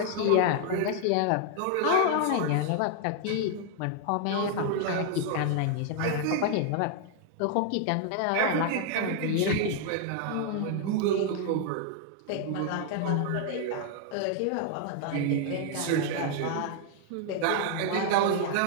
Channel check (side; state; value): both; different; correlation 0.00